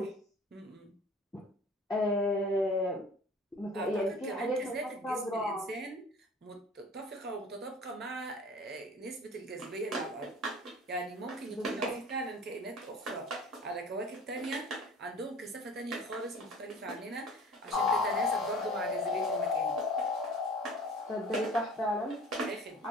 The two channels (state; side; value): normal; both; correlation 0.44